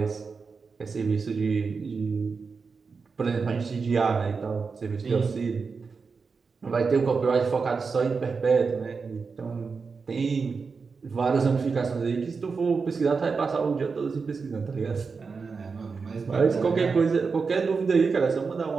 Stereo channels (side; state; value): left; quieter; 5.0 dB